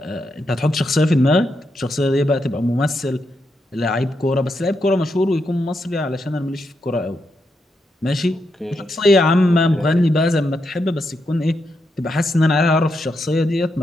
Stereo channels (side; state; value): both; normal; correlation 0.83